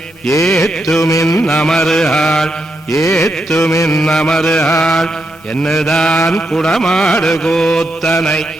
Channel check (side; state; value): both; normal; correlation 0.82